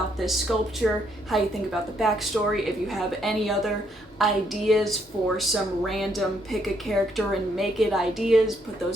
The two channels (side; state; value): both; normal; correlation 0.72